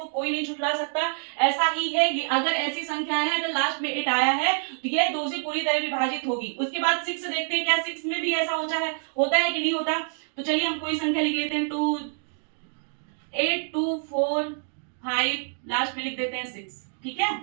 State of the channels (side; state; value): left; silent; 61 dB below the other